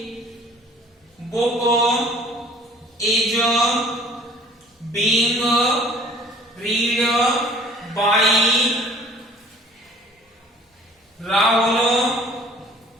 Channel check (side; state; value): both; normal; correlation 0.51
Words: book is being read by Rahul